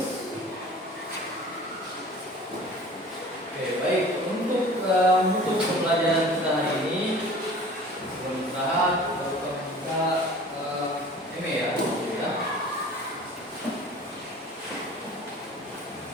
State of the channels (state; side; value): normal; both; correlation 0.44